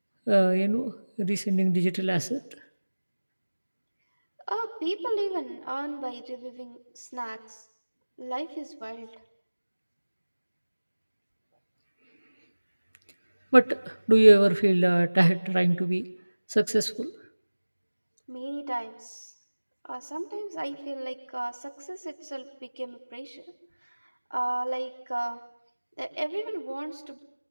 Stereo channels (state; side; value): inverted; both; correlation -1.00